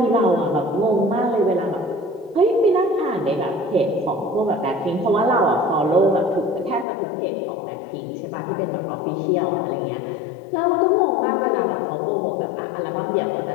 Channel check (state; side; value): drops out; right; at 6.9 s